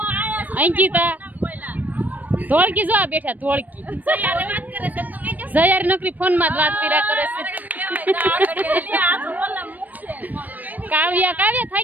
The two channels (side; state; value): left; late; 0.083 ms